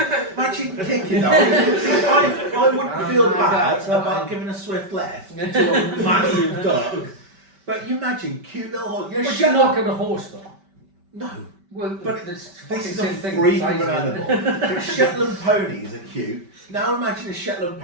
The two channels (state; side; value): late; left; 5.2 ms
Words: Imagine kicking that. I wouldn't feel my bad God. about giving a swift left to a massive duck. But you imagine cute little horse. You're a But you're Shetland. not going to horse though. No. Well, But it's This is a same thing. freak of size an of it. animal. But Shetland ponies are cute. Now imagine a Shetland